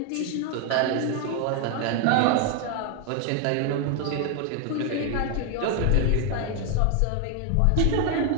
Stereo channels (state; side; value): different; both; correlation 0.00